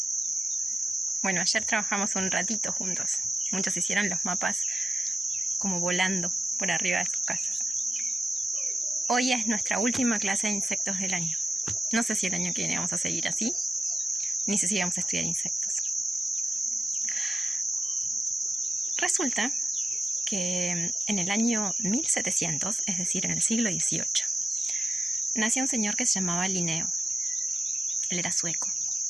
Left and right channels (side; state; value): both; normal; correlation 0.91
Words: Bueno, ayer trabajamos un ratito juntos. Muchos hicieron los mapas como volando por arriba de sus casas. Hoy es nuestra última clase de insectos del año. No sé si el año que viene vamos a seguir así, ni sé si vamos a estudiar insectos. Resulta que en el año 1700, es decir, en el siglo XVIII, nació un señor que se llamaba Linneo. Él era sueco.